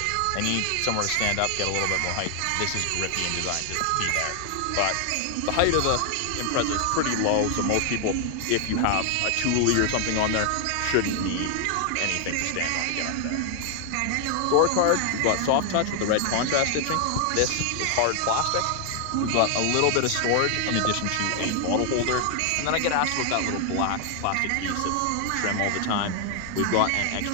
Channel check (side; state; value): both; different; correlation 0.00